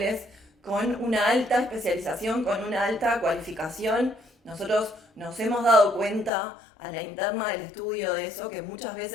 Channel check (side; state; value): right; drops out; at 6.3 s